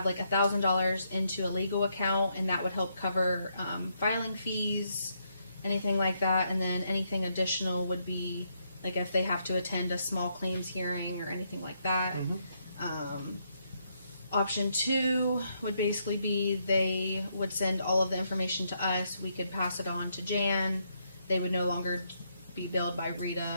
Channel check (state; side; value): inverted; both; correlation -0.77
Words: like $1,000 into a legal account, and that would help cover filing fees, anything like that. And then anything additional would be like if they have to attend a small claims hearing or anything like that. Option 2 would basically be they would send all of the information to us. We could pass it on to Jan. They would no longer be billed by